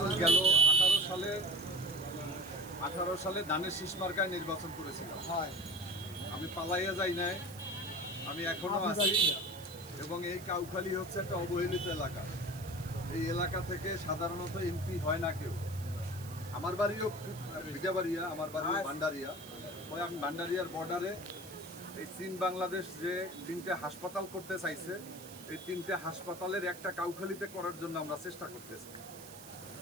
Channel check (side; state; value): right; noise; hiss, 17 dB below the sound